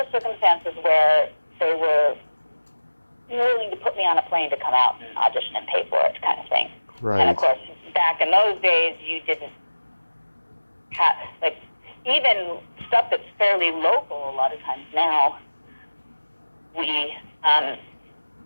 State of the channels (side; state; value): both; inverted; correlation -1.00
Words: circumstances where they were willing to put me on a plane to come out and audition and pay for it, kind of thing. Right. And of course, back in those days, you didn't have, like, even stuff that's fairly local a lot of times now,